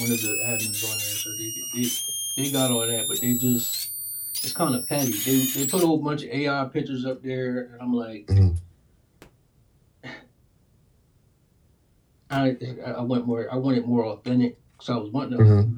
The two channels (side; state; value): both; identical; correlation 1.00